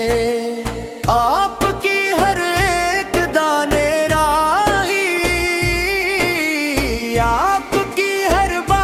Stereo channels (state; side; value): identical; both; correlation 1.00